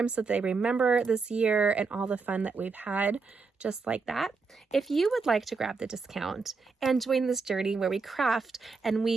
so that they remember this year and all the fun that we've had, just like that. If you would like to grab the discount and join this journey where we craft and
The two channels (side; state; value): left; quieter; 4.5 dB